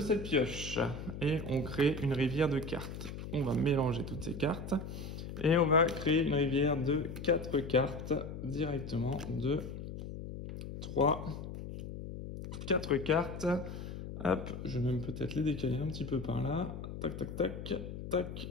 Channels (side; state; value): left; noise; hum, 8 dB below the sound